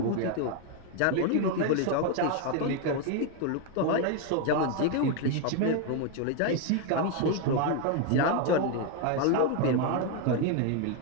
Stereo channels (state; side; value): different; both; correlation 0.01